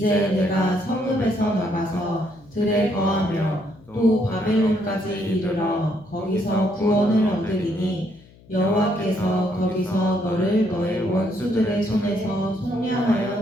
내가 성읍에서 나가서 들에 거하며 또 바벨론까지 이르러 거기서 구원을 얻으리니 여호와께서 거기서 너를 너의 원수들의 손에서 속량하여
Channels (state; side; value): noise; left; hum, 25 dB below the sound